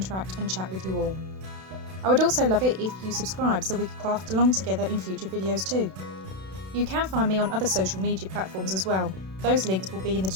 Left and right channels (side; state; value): left; late; 32 ms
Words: and chat with you all. I would also love it if you subscribe so we could craft along together in future videos too. You can find me on other social media platforms as well. Those links will be in the